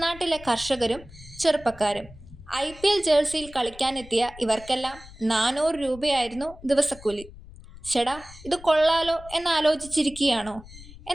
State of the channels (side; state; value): left; noise; rumble, 18 dB below the sound